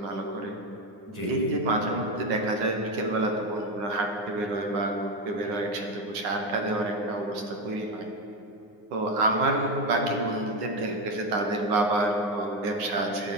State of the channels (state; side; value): late; left; 9.7 ms